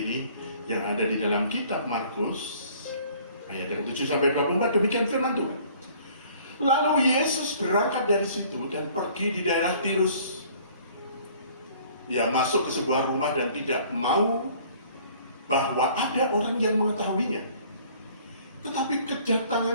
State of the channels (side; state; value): both; inverted; correlation -0.54